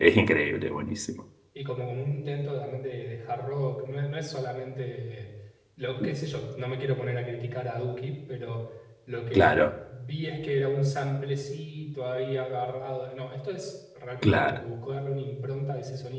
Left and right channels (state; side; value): identical; both; correlation 1.00